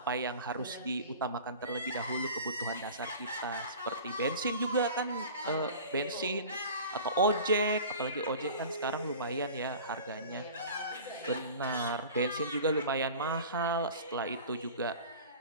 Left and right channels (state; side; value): inverted; both; correlation -0.40